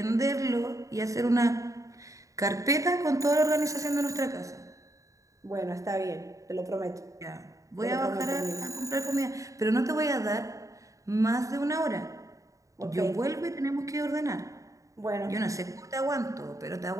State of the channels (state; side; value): late; left; 0.16 ms